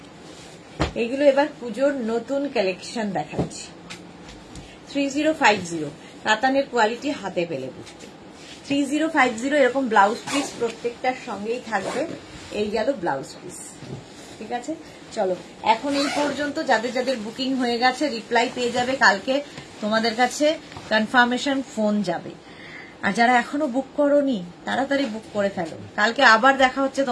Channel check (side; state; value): both; identical; correlation 1.00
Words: এইগুলো এবার পুজোর নতুন কালেকশন দেখাচ্ছি। 3050 কাতানের কোয়ালিটি হাতে পেলে বুঝবে। 3050 এরকম ব্লাউজ পিস প্রত্যেকটার সঙ্গেই থাকবে। এই গেল ব্লাউজ পিস, ঠিক আছে। চলো এখন এই পর্যন্ত, যাদের যাদের বুকিং হয়ে গেছে রিপ্লাই পেয়ে যাবে, কালকে তোমাদের কাছে কনফার্মেশন ফোন যাবে। আর যারা এখনো বুক করোনি তাড়াতাড়ি বুক করে ফেলো, কালকে আবার দেখা হচ্ছে